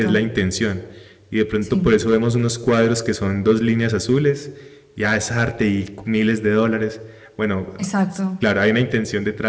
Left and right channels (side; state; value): both; identical; correlation 1.00